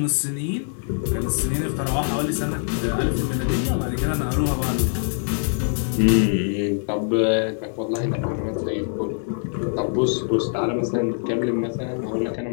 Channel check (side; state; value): right; silent; digital silence